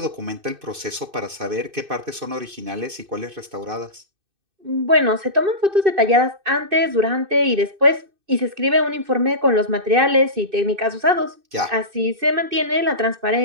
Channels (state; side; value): late; left; 2.6 ms